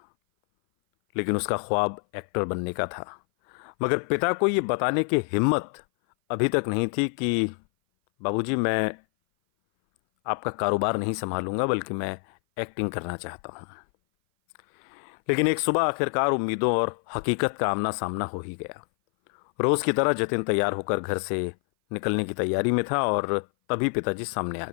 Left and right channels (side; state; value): right; silent; 57 dB below the other